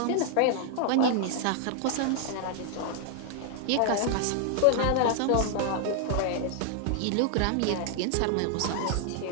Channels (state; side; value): different; both; correlation 0.00